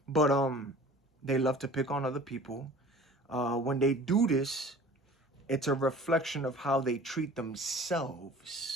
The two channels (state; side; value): normal; both; correlation 0.45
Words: But they love to pick on other people. When they do this, it's a reflection of how they treat